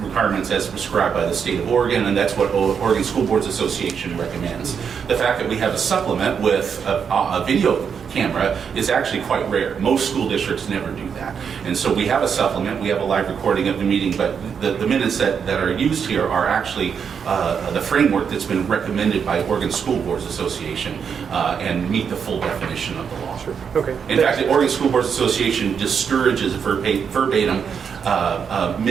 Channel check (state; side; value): quieter; left; 6.9 dB